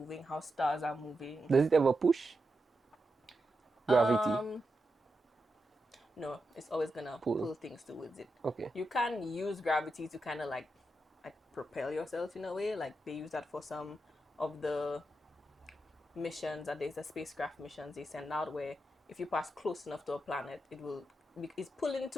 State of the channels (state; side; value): normal; both; correlation 0.87